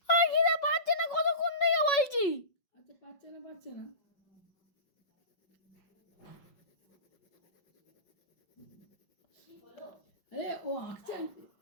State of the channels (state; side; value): late; right; 5.4 ms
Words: আর খিদে পাচ্ছে না, কতক্ষণ থেকে বলছি। আচ্ছা পাচ্ছে না। আরে ও আঁকছে,